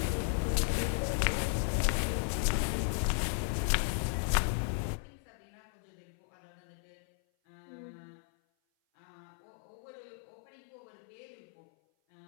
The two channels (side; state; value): right; silent; 54 dB below the other